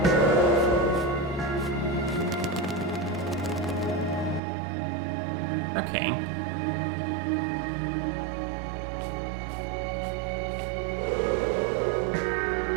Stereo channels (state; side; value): drops out; left; at 4.4 s